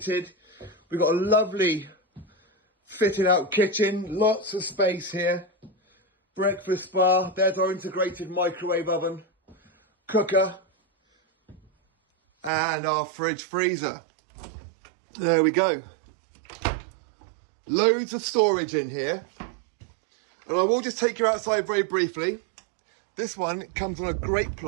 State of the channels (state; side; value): drops out; left; at 12.5 s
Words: We've got a lovely fitted out kitchen. Lots of space here. Breakfast bar. There's our integrated microwave oven. Cooker. And our fridge freezer. There we go. Loads of storage in here. And I will just take you outside very briefly. This one comes on a great